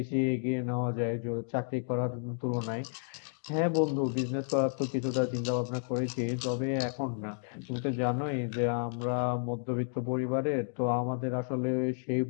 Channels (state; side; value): silent; right; digital silence